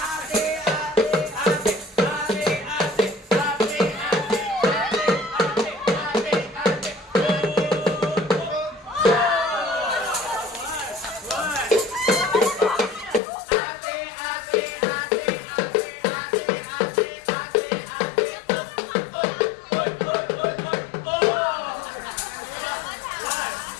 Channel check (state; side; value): drops out; right; at 13.2 s